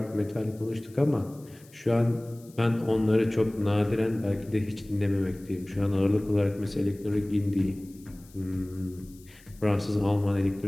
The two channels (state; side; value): noise; left; hiss, 26 dB below the sound